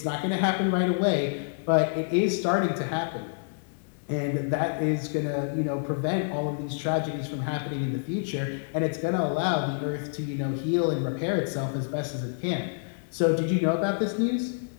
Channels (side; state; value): right; silent; 59 dB below the other